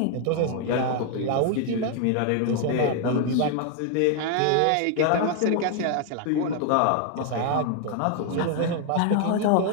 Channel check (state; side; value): different; both; correlation 0.00